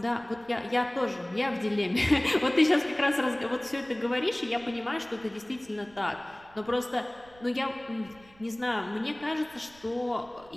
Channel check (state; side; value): noise; right; rumble, 26 dB below the sound